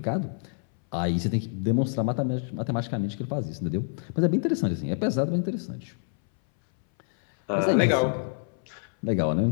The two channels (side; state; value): right; silent; 60 dB below the other